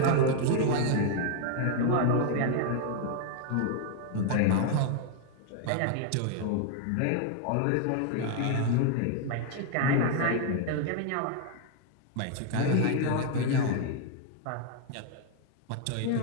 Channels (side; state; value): both; different; correlation 0.00